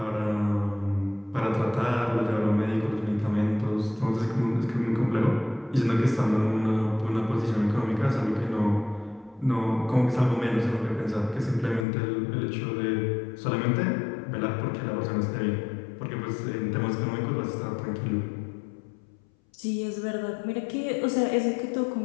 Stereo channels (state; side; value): drops out; right; at 11.9 s